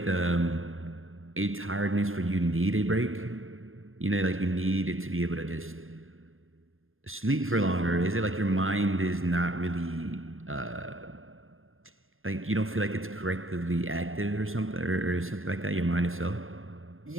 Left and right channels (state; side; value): late; left; 0.60 ms